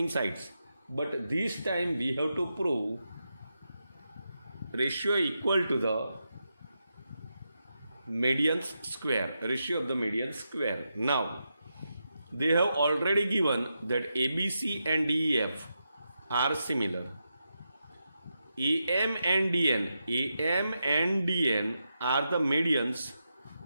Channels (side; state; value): both; inverted; correlation -0.87